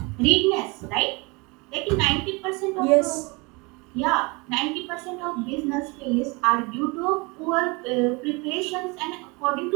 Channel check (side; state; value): left; quieter; 27.6 dB